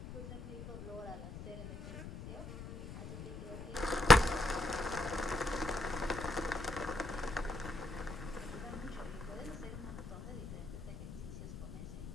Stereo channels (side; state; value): left; noise; rumble, 10 dB below the sound